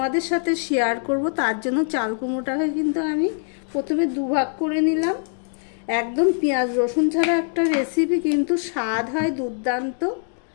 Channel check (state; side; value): silent; right; 62 dB below the other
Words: সাথে শেয়ার করব। তার জন্য চাল কুমড়োটাকে কিন্তু আমি প্রথমে দুভাগ করে নিলাম। একদম পেঁয়াজ রসুন ছাড়া একটা রেসিপি, কিন্তু স্বাদ হয় দুর্দান্ত।